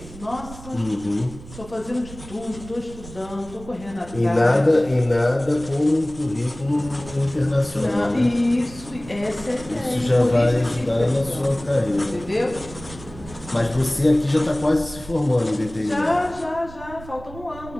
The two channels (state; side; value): noise; right; rumble, 16 dB below the sound